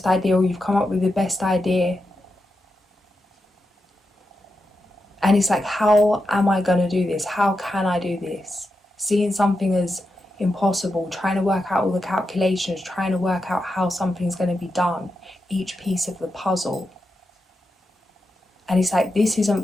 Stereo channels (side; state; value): both; normal; correlation 0.88